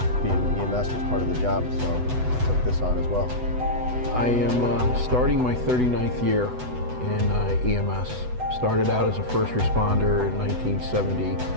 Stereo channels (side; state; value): left; late; 8.0 ms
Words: being EMS was part of the job, so I took this on as well. I am starting my 39th year in EMS. Started out as a first responder in